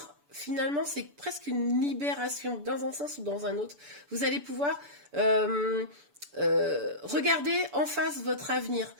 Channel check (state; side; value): late; left; 6.9 ms